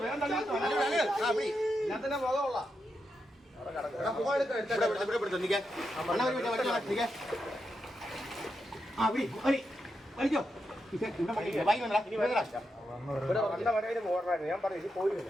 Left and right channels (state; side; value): normal; both; correlation 0.85